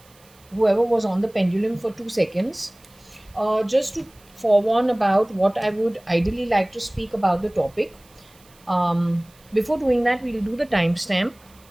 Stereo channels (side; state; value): right; noise; hiss, 28 dB below the sound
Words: whoever was on the pendulum for 2 seconds. Just to forewarn about what I would ideally like to speak about the topic. Before doing that, we'll do the timestamp.